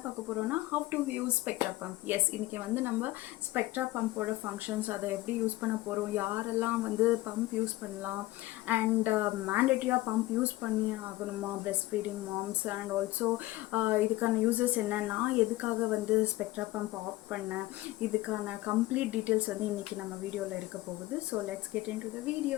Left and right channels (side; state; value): right; quieter; 18.0 dB